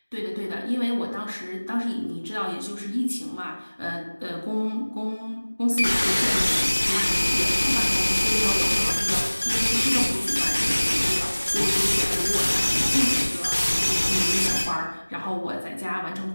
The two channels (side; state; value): both; inverted; correlation -1.00